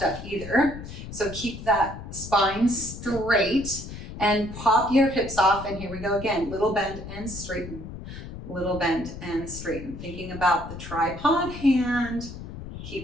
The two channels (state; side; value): noise; left; rumble, 11 dB below the sound